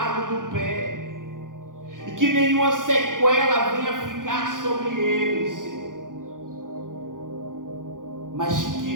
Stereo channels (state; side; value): late; left; 0.89 ms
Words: do pé, e que nenhuma sequela venha ficar sobre ele, Senhor, mas